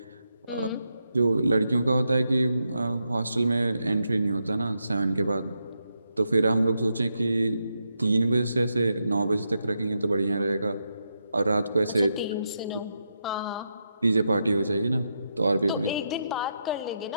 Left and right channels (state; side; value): inverted; both; correlation -0.84